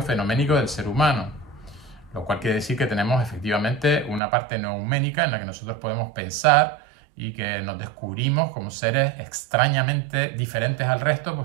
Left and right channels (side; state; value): left; drops out; at 4.2 s